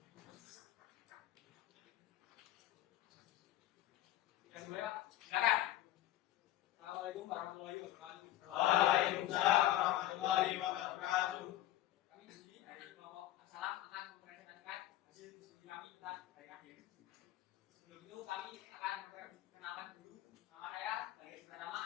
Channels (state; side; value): quieter; right; 14.4 dB